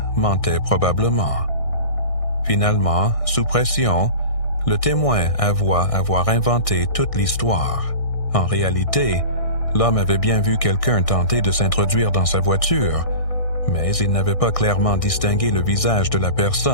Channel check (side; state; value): right; late; 1.6 ms